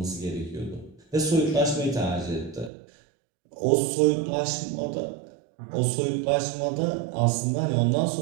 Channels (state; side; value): drops out; left; at 2.7 s